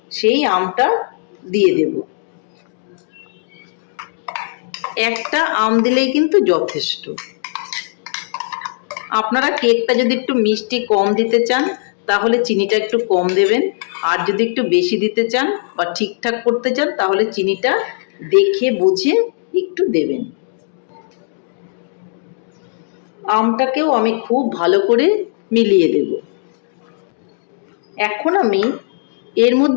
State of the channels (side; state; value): right; silent; digital silence